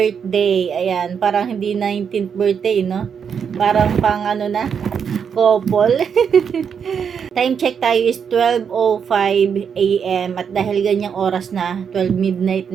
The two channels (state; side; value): quieter; left; 7.1 dB